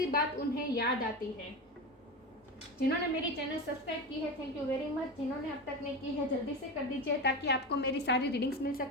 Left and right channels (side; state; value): both; normal; correlation 0.23